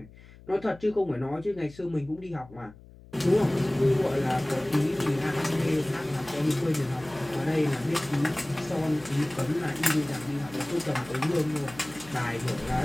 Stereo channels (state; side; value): noise; left; hum, 21 dB below the sound